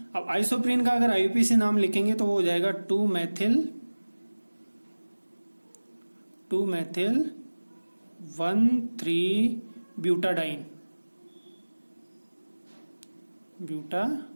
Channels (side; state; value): both; inverted; correlation -1.00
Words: अब आइसोप्रीन का अगर आईयूपी से नाम लिखेंगे तो वो हो जाएगा 2-मेथिल